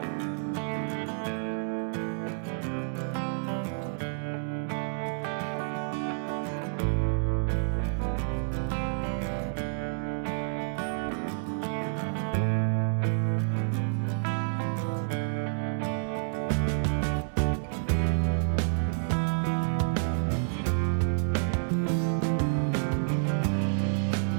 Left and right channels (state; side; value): silent; left; digital silence